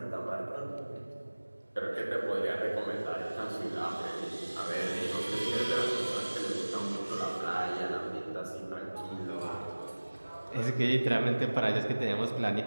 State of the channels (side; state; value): both; inverted; correlation -1.00